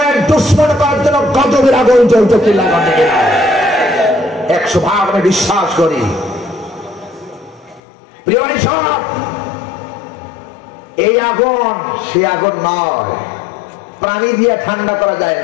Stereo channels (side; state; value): right; drops out; at 7.8 s